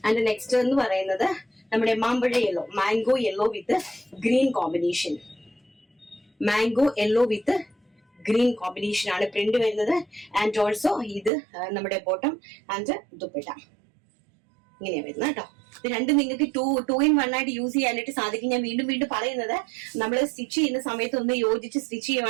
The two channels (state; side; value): drops out; left; at 11.3 s